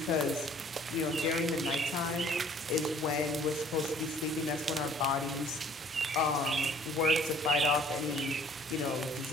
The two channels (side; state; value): both; normal; correlation 0.56